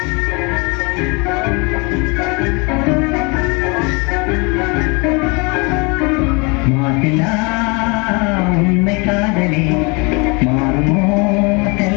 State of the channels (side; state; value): right; quieter; 29.8 dB